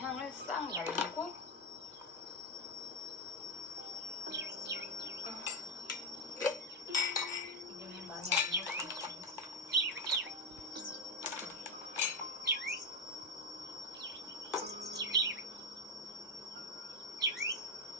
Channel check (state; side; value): normal; both; correlation 0.07